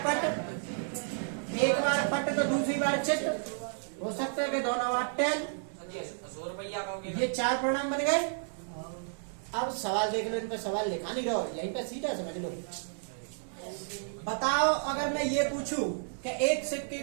पट, एक बार पट तो दूसरी बार चित्त, हो सकता है कि दोनों बार टेल। ये 4 परिणाम बन गए। अब सवाल देख लो, इन पे सवाल लिखा नहीं रहो, यहीं पे सीधा समझ लो। बताओ अगर मैं ये पूछूं कि एक सिक्के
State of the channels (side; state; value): left; silent; 57 dB below the other